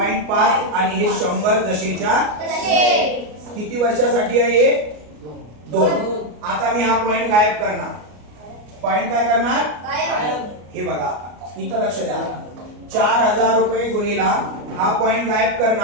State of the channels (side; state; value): left; late; 33 ms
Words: आणि हे 100 जसेच्या किती वर्षासाठी आहे? 2. आता मी हा पॉइंट गायब करणार. पॉइंट काय करणार? हे बघा इथं लक्ष द्या. 4000 रुपये गुणिला हा पॉइंट गायब